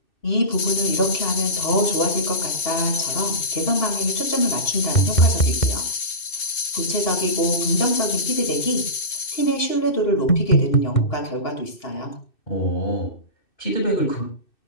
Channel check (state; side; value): late; right; 2.6 ms